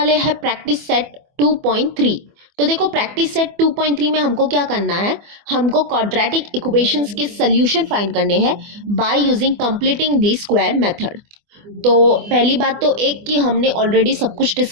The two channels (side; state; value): left; late; 24 ms